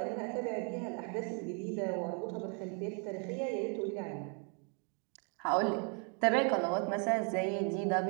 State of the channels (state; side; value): quieter; left; 38.5 dB